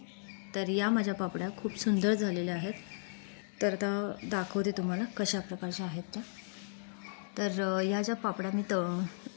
तर या माझ्या पापड्या खूप सुंदर झालेल्या आहेत। तर आता दाखवते तुम्हाला कशा प्रकारच्या आहेत त्या। तर या ज्या पापड्या मी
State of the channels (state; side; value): silent; right; digital silence